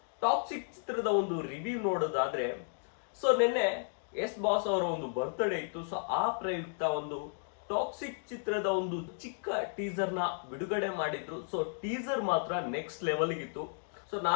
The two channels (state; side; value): silent; right; digital silence